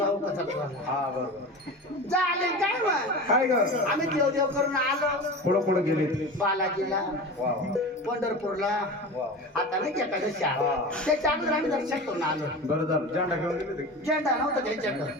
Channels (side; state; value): both; normal; correlation 0.30